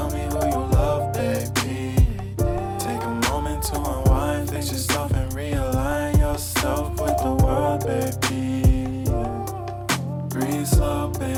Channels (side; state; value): both; identical; correlation 1.00